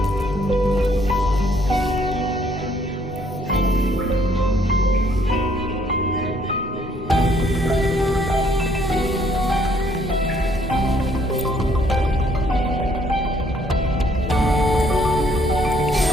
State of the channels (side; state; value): both; normal; correlation 0.66